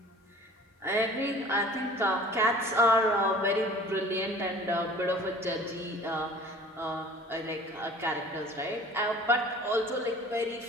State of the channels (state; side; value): normal; both; correlation 0.46